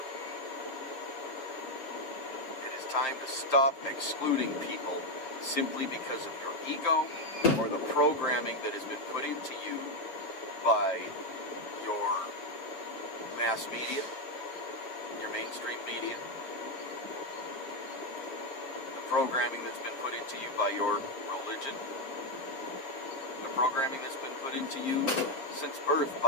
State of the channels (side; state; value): right; late; 7.5 ms